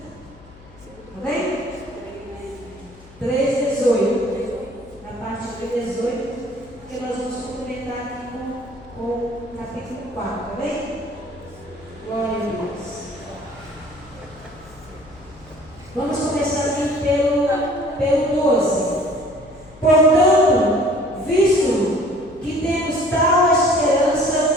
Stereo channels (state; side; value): noise; left; hum, 23 dB below the sound